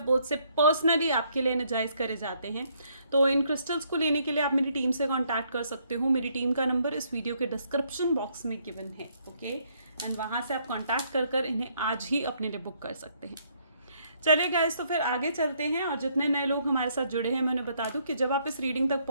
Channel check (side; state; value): both; inverted; correlation -0.70